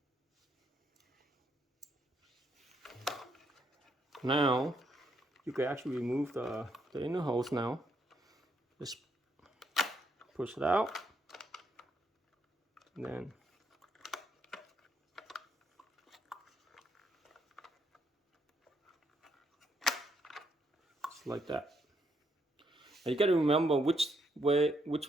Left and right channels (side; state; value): both; normal; correlation 0.75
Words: Now you can actually remove the inner hose now. Just push it out, and then just like that. And you got to remember which